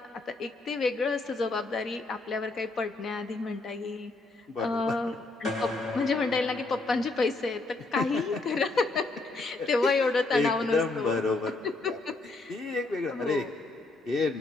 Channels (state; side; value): quieter; right; 3.3 dB